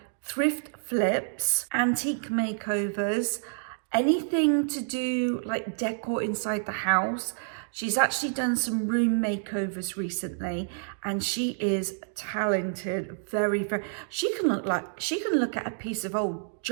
thrift flips, antique makeovers, anything to do like decor inside the house. She's actually done some room makeovers recently, and she is talented, very. She can look at a piece of old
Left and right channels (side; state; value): left; silent; digital silence